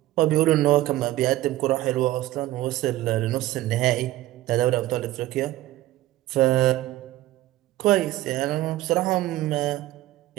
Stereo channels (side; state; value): left; quieter; 15.6 dB